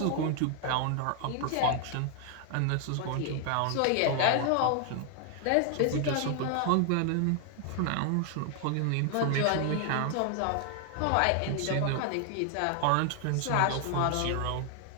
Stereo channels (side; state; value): both; different; correlation 0.00